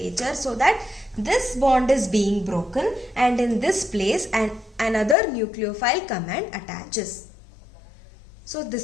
so that this bond is being broken, and in this place another nucleophile come and attaches. So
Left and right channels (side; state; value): right; drops out; at 5.2 s